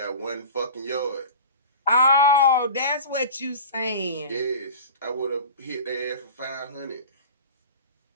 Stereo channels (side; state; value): both; inverted; correlation -0.36